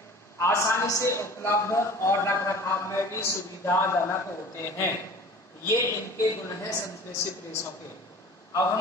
आसानी से उपलब्ध और रखरखाव में भी सुविधाजनक होते हैं। ये इनके गुण हैं संश्लेषित रेशों के। अब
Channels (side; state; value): both; normal; correlation 0.42